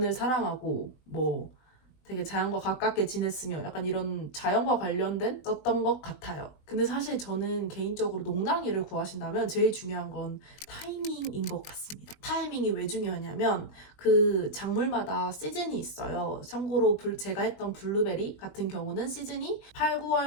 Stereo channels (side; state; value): right; late; 20 ms